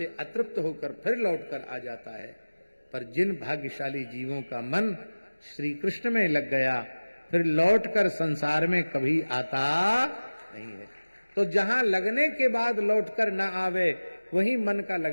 अतृप्त होकर फिर लौटकर आ जाता है। पर जिन भाग्यशाली जीवों का मन श्री कृष्ण में लग गया, फिर लौटकर संसार में कभी आता नहीं है। तो जहां लगने के बाद लौटकर ना आवे, वही मन का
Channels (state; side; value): inverted; both; correlation -1.00